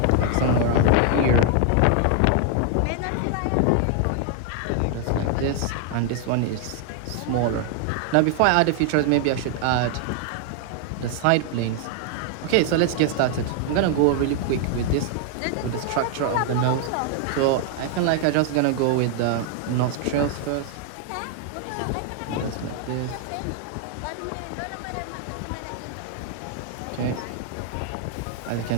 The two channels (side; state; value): both; different; correlation 0.00